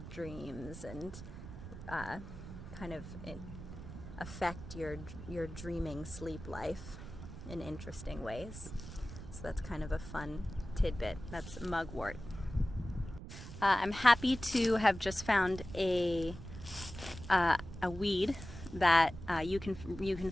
dreams and kind of affect your dreaming sleep life in interesting ways. So that's kind of a fun tidbit. That's mugwort. I'm happy to have just found a weed that you can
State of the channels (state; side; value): noise; right; rumble, 11 dB below the sound